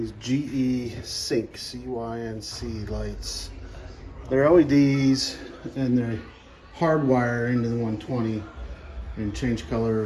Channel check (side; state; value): both; identical; correlation 1.00